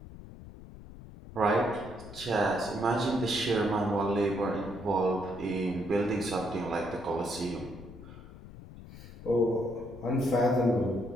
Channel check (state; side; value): noise; left; rumble, 16 dB below the sound